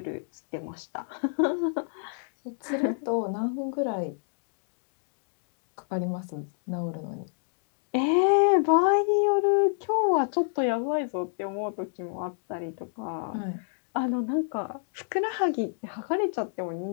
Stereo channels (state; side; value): silent; right; digital silence